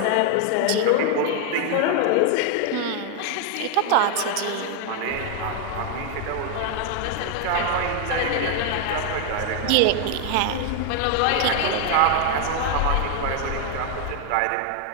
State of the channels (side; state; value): both; different; correlation 0.01